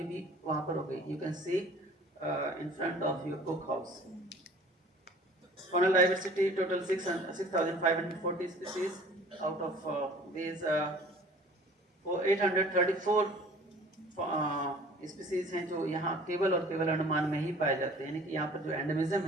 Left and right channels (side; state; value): both; normal; correlation 0.49